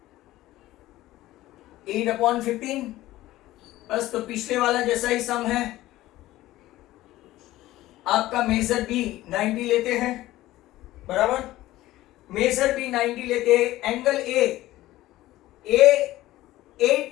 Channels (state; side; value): quieter; right; 16.1 dB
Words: 8/15, बस तो पिछले वाला जैसा ही सम है। आपका मेजर बी 90 लेते हैं, बराबर। मेजर बी 90 लेते हैं, angle A